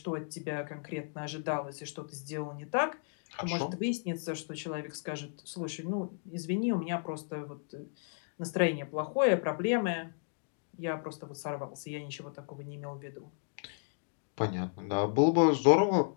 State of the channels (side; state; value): right; silent; digital silence